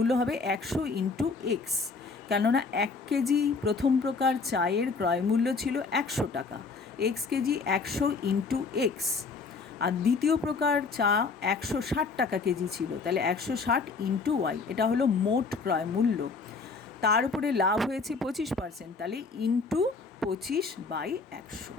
হবে 100 ইন্টু x, কেননা 1 কেজি প্রথম প্রকার চায়ের ক্রয় মূল্য ছিল 100 টাকা, x কেজি 100 ইন্টু x, আর দ্বিতীয় প্রকার চা 160 টাকা কেজি ছিল, তাহলে 160 ইন্টু y, এটা হলো মোট ক্রয় মূল্য। তার উপরে লাভ হয়েছে 25%, তাহলে ইন্টু 25/100।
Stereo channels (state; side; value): quieter; right; 4.5 dB